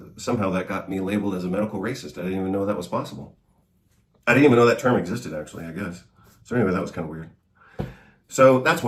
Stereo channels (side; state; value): both; identical; correlation 1.00